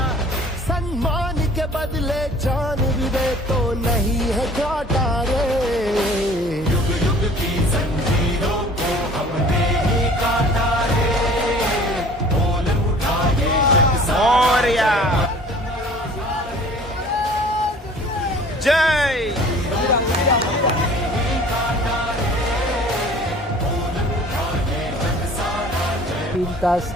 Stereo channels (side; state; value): both; normal; correlation 0.49